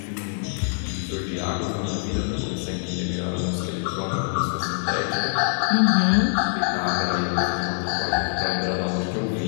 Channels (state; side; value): silent; right; digital silence